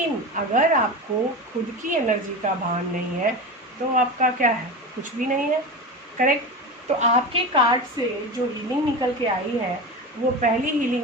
अगर आपको खुद की एनर्जी का भान नहीं है तो आपका क्या है? कुछ भी नहीं है। करेक्ट? तो आपके कार्ड से जो हीलिंग निकल के आई है वो पहली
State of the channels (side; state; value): both; normal; correlation 0.26